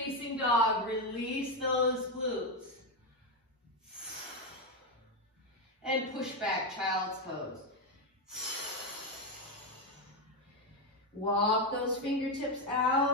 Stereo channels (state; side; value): normal; both; correlation 0.08